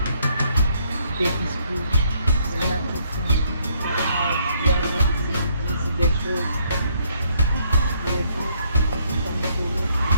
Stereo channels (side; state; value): both; inverted; correlation -0.70